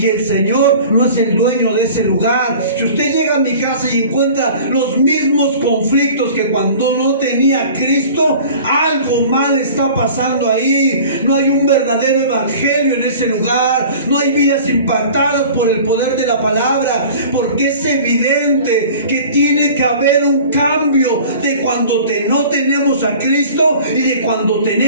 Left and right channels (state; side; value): inverted; both; correlation -0.43